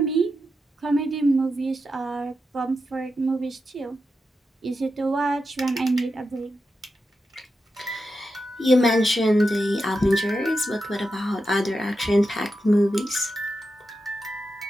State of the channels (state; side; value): normal; both; correlation 0.88